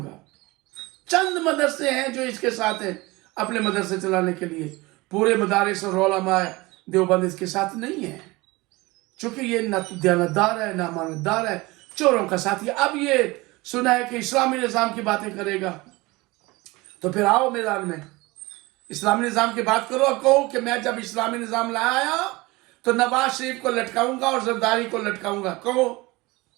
चंद मदरसे हैं जो इसके साथ हैं अपने मदरसे चलाने के लिए, पूरे मदारिस और उलमा देवबंद इसके साथ नहीं है, चूंकि ये ना तो दयानतदार है, ना मानतदार है, चोरों का साथी। अब ये सुना है कि इस्लामी निज़ाम की बातें करेगा, तो फिर आओ मैदान में इस्लामी निज़ाम की बात करो और कहो कि मैं जब इस्लामी निज़ाम लाया तो नवाज शरीफ को लटकाऊंगा और जरदारी को लटकाऊंगा, कहो।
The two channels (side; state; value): left; quieter; 22.4 dB